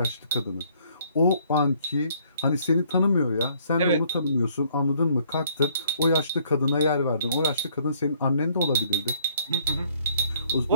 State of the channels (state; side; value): inverted; both; correlation -0.63